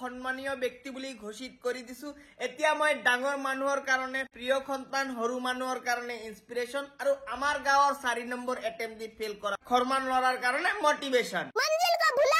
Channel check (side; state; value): both; identical; correlation 1.00